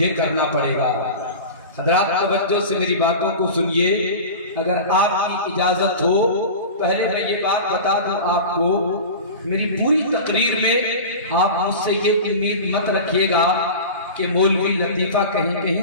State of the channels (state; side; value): inverted; both; correlation -0.31